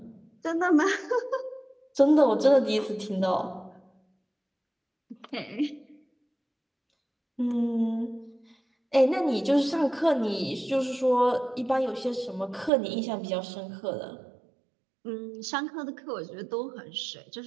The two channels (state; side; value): drops out; left; at 12.7 s